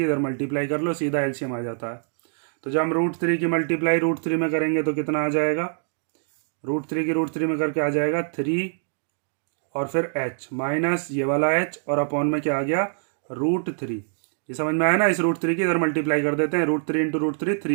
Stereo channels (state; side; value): silent; left; digital silence